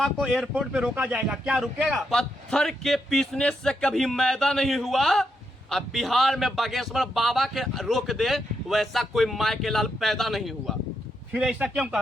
को एयरपोर्ट पे रोका जाएगा, क्या रुकेगा? पत्थर के पीसने से कभी मैदा नहीं हुआ। अब बिहार में बागेश्वर बाबा के रोक दे वैसा कोई माय के लाल पैदा नहीं हुआ। फिर ऐसा क्यों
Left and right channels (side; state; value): both; normal; correlation 0.81